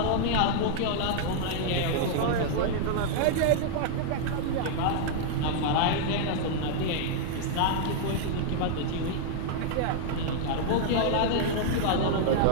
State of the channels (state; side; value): different; both; correlation 0.00